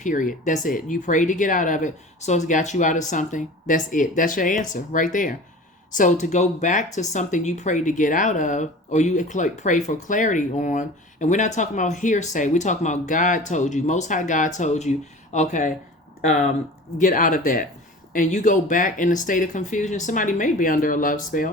That's it. You prayed to get out of it, so it's got you out of something. That's it. That's your answer right there. So to go back to something you prayed to get out of, or you pray for clarity on, and we're not talking about hearsay. We're talking about God told you, Most High God told you, okay, get out of that. And you go back in a state of confusion. Somebody may be under a love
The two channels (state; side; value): normal; both; correlation 0.39